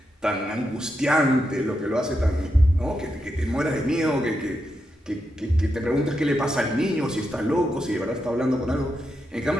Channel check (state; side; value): normal; both; correlation 0.85